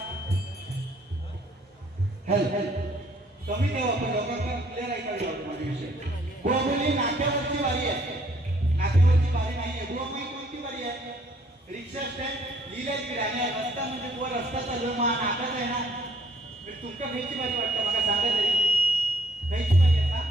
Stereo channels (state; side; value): normal; both; correlation 0.63